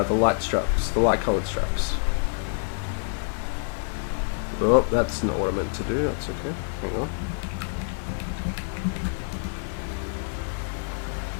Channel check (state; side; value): silent; right; 60 dB below the other